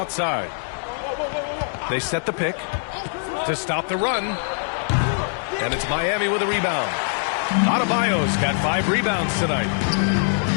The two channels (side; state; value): right; silent; digital silence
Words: They set the pick to stop the run. And it's Miami with a rebound. Adebayo's got 5 rebounds tonight.